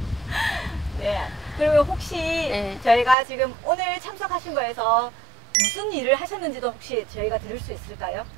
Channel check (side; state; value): left; drops out; at 3.2 s